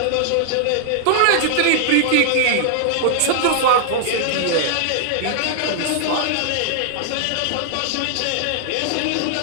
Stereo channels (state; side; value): different; both; correlation -0.01